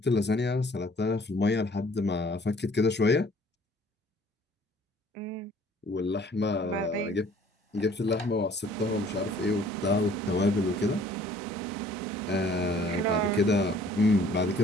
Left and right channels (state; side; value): normal; both; correlation 0.56